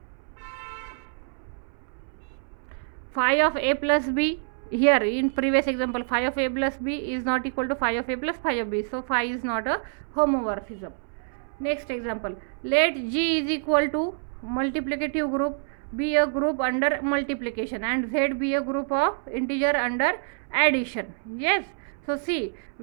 Phi of a plus b. Here in previous example, phi of a plus b is not equal to phi of a plus phi of b. So phi is not a homomorphism. Next example. Let G is equal to multiplicative group be a group under multiplication and Z be a group of integer under addition. Yes. So see,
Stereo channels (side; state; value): left; silent; 60 dB below the other